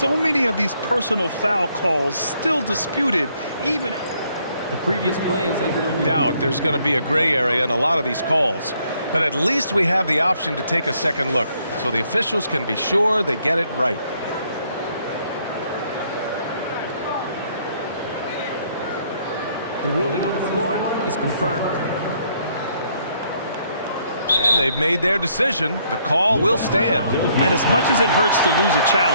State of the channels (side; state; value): both; inverted; correlation -0.68